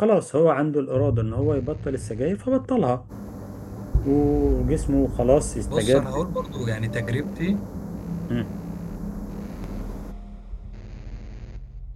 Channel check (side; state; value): both; identical; correlation 1.00